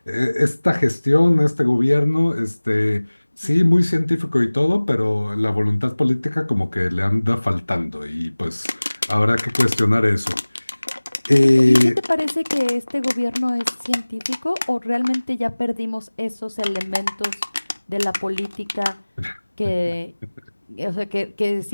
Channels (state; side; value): inverted; both; correlation -1.00